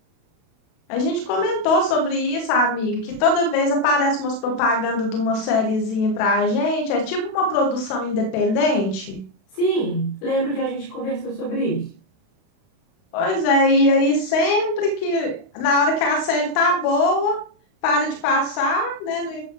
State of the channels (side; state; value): right; late; 32 ms